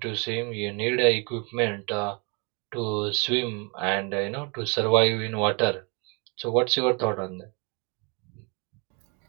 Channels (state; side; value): quieter; left; 31.3 dB